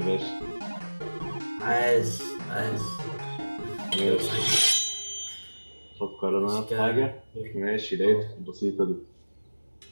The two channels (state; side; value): inverted; both; correlation -1.00